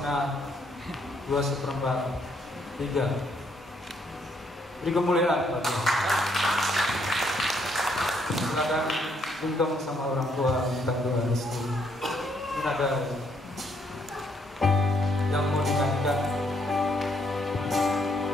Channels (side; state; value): both; normal; correlation 0.71